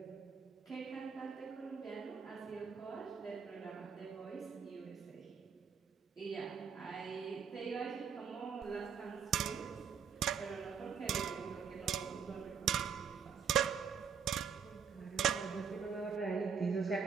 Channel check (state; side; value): quieter; left; 6.8 dB